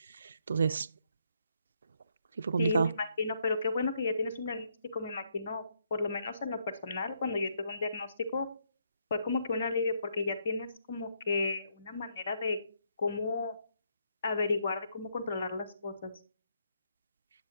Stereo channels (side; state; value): both; inverted; correlation -0.74